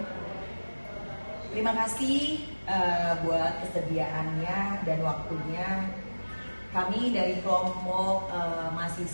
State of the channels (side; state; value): both; inverted; correlation -1.00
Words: Terima kasih buat kesediaannya dan waktunya. Kami dari kelompok